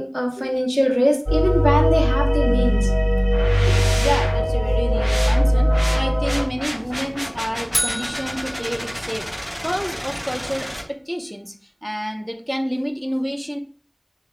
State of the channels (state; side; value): identical; both; correlation 1.00